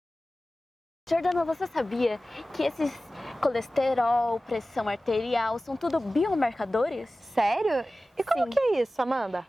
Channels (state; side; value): normal; both; correlation 0.96